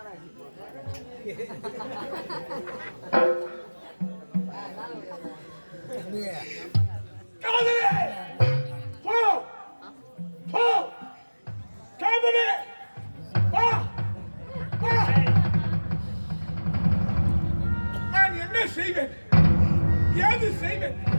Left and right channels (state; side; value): inverted; both; correlation -1.00